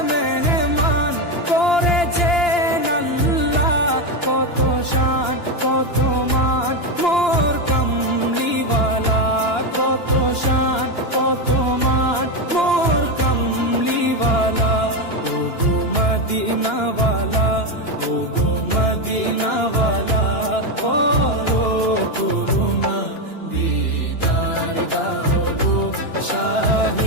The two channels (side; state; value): right; late; 2.9 ms